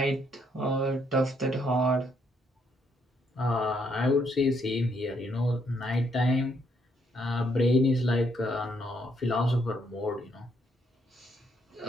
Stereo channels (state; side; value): normal; both; correlation 0.72